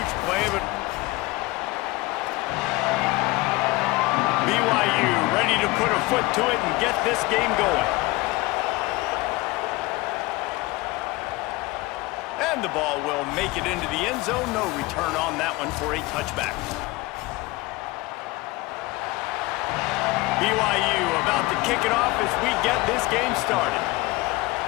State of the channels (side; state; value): right; quieter; 21.4 dB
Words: play, but BYU ready to put a foot to it and get this game going. And the ball will make it into the end zone. No return on that one for a touchback. BYU about to kick it off as we get this game started.